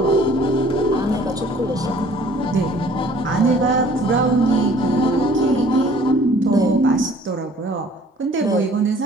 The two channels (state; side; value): normal; both; correlation 0.54